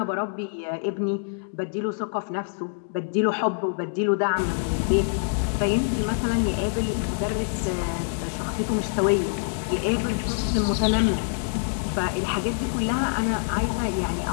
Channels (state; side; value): silent; right; digital silence